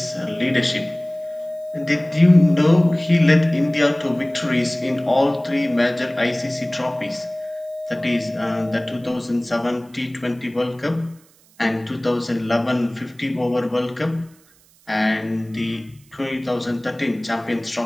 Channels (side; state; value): right; noise; hiss, 30 dB below the sound